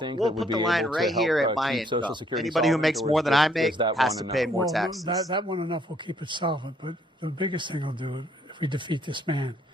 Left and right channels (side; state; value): both; normal; correlation 0.67